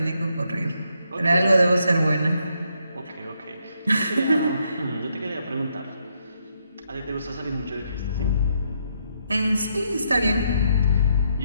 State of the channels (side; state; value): both; inverted; correlation -0.76